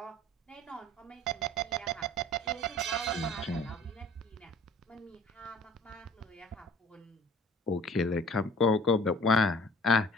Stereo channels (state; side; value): normal; both; correlation 0.50